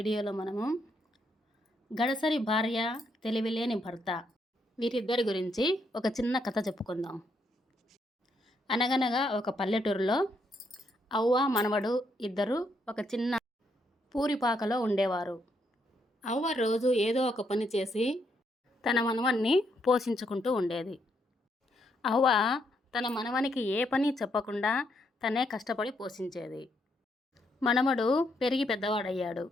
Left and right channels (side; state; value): both; normal; correlation 0.76